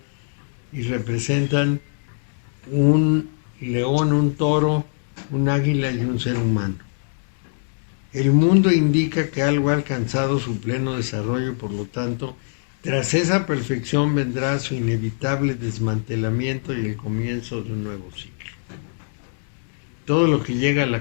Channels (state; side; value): silent; right; digital silence